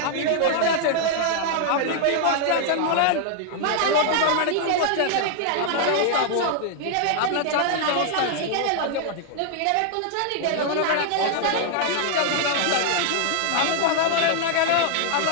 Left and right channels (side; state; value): both; different; correlation -0.01